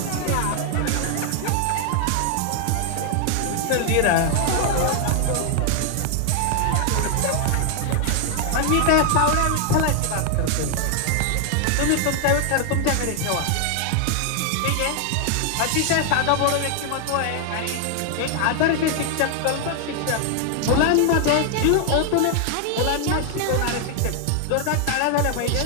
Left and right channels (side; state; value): both; different; correlation 0.00